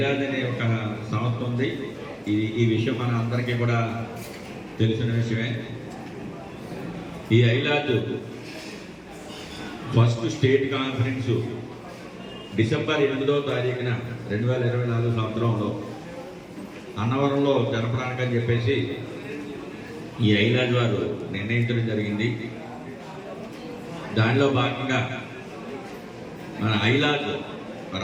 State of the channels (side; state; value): both; identical; correlation 1.00